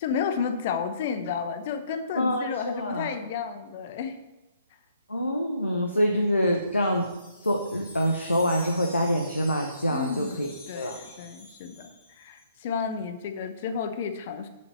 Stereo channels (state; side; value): inverted; both; correlation -0.68